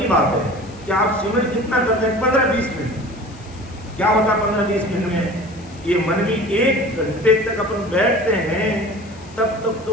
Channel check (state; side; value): noise; left; hiss, 24 dB below the sound